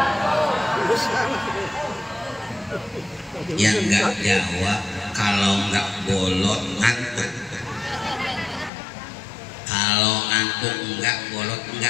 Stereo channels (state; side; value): drops out; right; at 8.7 s